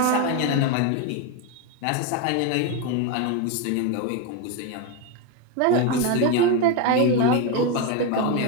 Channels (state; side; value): different; both; correlation 0.03